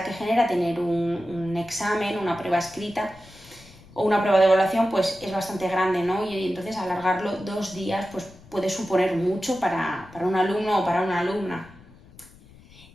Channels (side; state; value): left; noise; rumble, 23 dB below the sound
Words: que genera tener un examen, una prueba escrita o una prueba de evaluación, pues es bastante grande, ¿no? Y entonces alargarlo 2 días pues puede suponer mucho para un alumno o para una alumna.